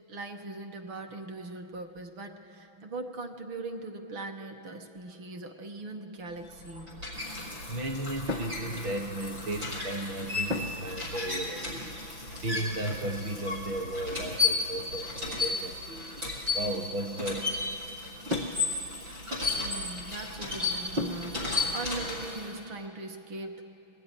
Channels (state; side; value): late; left; 6.0 ms